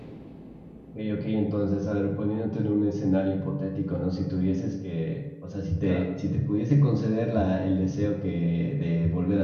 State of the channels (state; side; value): identical; both; correlation 1.00